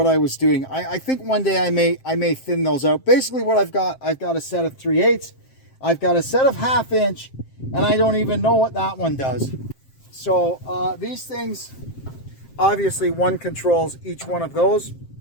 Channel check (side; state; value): right; late; 7.6 ms